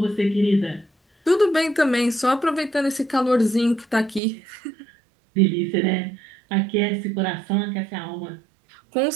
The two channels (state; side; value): drops out; left; at 4.2 s